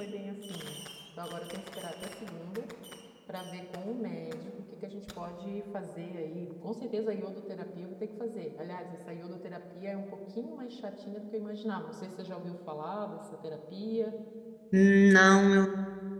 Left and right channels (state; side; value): identical; both; correlation 1.00